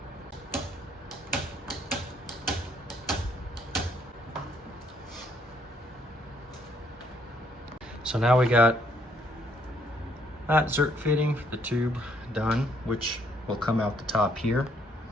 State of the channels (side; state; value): both; normal; correlation 0.68